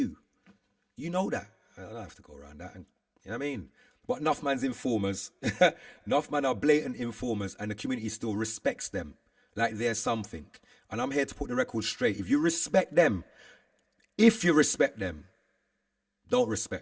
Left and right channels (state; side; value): identical; both; correlation 1.00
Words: You know that. I don't have to go around that. And, you know what I mean? But enough man's informers. Enough man are blatant informers and the community still respects them like they're something. And I'm here to put the record straight. If you respect them, don't